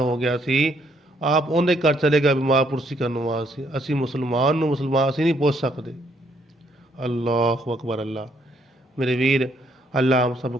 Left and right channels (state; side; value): normal; both; correlation 0.69